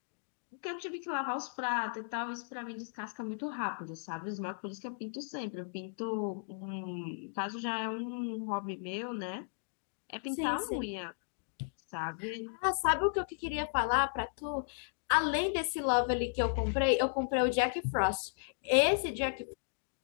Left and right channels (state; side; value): silent; right; digital silence